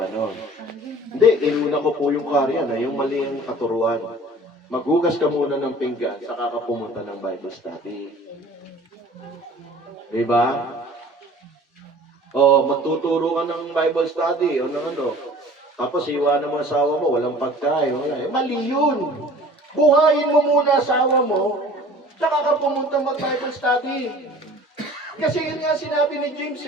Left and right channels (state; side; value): normal; both; correlation 0.46